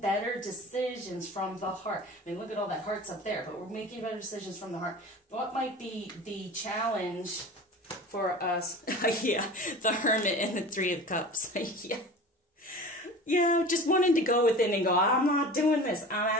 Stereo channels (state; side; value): normal; both; correlation 0.37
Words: decisions from the heart. I mean, look at all that hearts up there, but we're making better decisions from the heart. What might be the challenge for us? Yeah, the Hermit and the 3 of Cups. Yeah, just wanting to go within and go, I'm not doing this. I'm